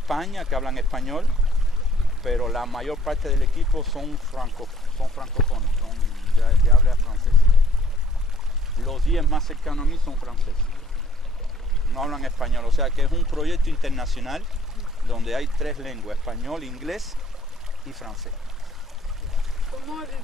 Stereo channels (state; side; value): normal; both; correlation 0.60